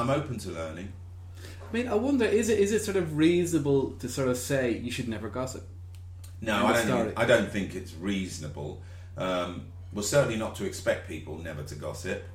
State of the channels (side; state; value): both; identical; correlation 1.00